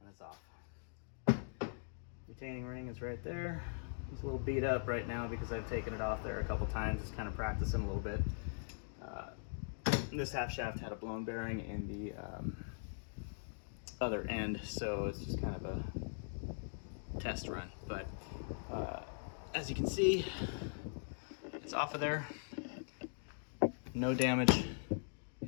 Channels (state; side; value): silent; right; digital silence